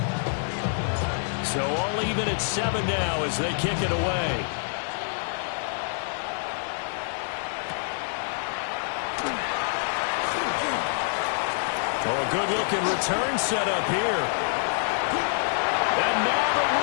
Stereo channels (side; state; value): right; silent; digital silence